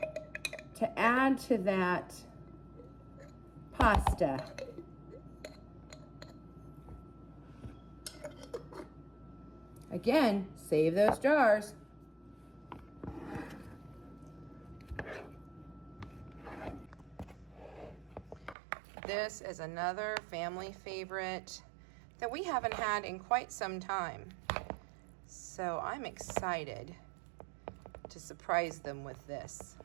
to add to that pasta. Again, save those jars. This is another family favorite that we haven't had in quite some time. So I'm excited to surprise them with this.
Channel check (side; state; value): left; drops out; at 18.6 s